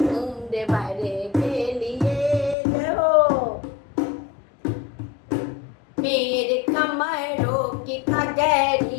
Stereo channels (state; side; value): drops out; right; at 2.6 s